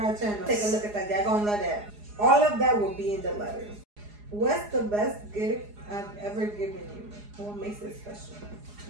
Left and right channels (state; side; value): late; left; 4.8 ms